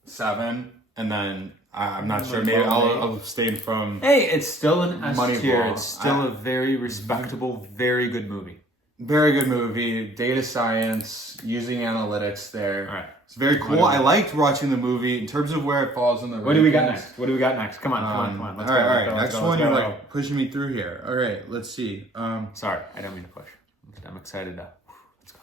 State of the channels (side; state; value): both; normal; correlation 0.56